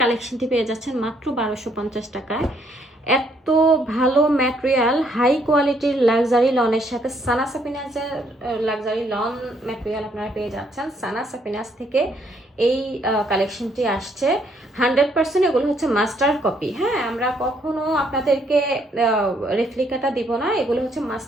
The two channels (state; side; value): normal; both; correlation 0.69